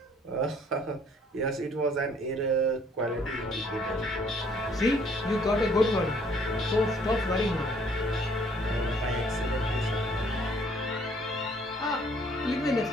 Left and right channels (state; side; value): normal; both; correlation 0.62